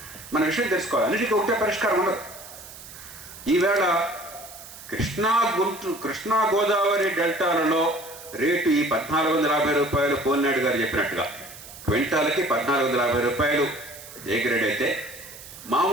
మన విషయం తెలుసుకోవాలి. అన్నిటికీ ఒకటే పరిష్కారం ఉండదు. ఈవేళ కృష్ణా గోదావరి డెల్టాలలో రేటు ఈ 1450 రూపాయలు పోలినాడు గారు చెప్పినట్టుగా క్వింటాలకి 1450 రూపాయలు ఏ గ్రేడ్ అయితే,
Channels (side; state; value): right; noise; hiss, 16 dB below the sound